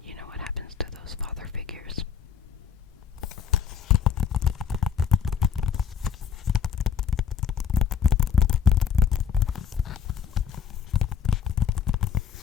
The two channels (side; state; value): right; quieter; 7.3 dB